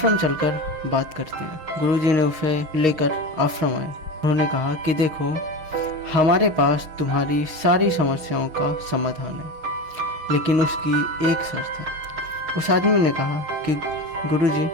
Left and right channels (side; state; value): left; late; 6.4 ms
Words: चलकर बात करते हैं। गुरुजी ने उसे लेकर आश्रम आए। उन्होंने कहा कि देखो, हमारे पास तुम्हारी सारी समस्याओं का समाधान है, लेकिन उसकी एक शर्त है। उस आदमी ने कहा कि गुरुजी,